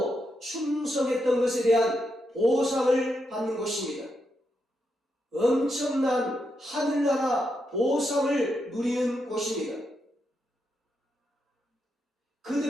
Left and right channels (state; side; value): normal; both; correlation 0.83